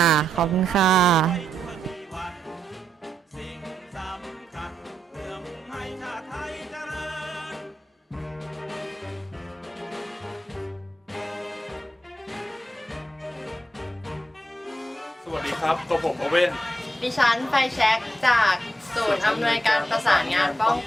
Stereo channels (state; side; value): normal; both; correlation 0.83